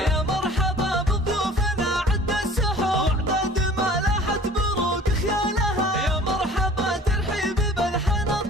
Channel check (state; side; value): normal; both; correlation 0.47